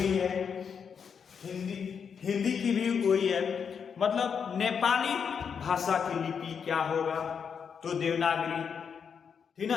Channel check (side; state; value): right; quieter; 6.7 dB